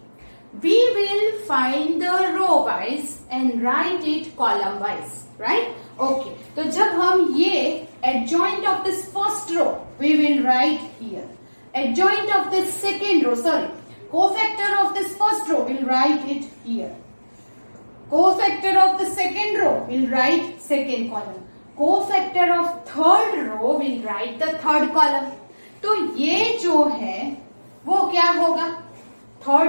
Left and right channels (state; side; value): inverted; both; correlation -1.00